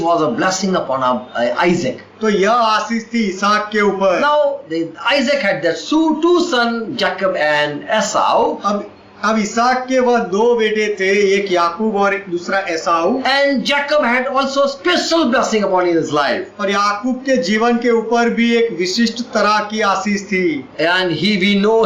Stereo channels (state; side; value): identical; both; correlation 1.00